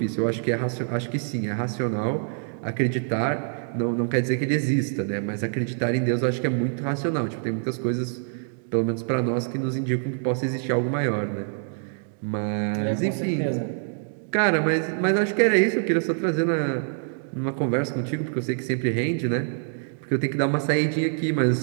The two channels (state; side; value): silent; left; 61 dB below the other